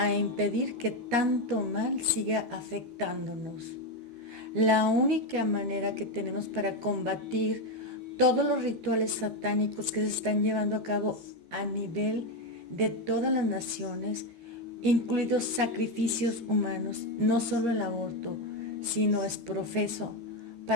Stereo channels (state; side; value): late; left; 13 ms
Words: impedir que tanto mal siga afectándonos. La única manera que tenemos para combatir todos los rituales satánicos que se están llevando a cabo a nivel de todas las naciones, incluidos sacrificios humanos, no solo el aborto, sino es profeso